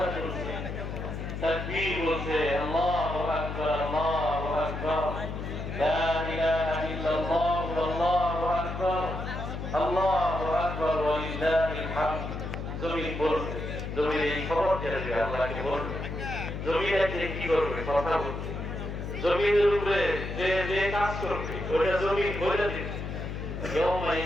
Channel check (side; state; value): left; noise; hum, 6 dB below the sound